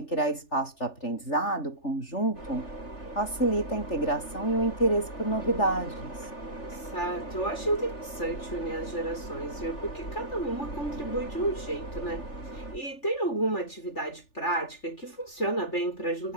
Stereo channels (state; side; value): late; right; 3.4 ms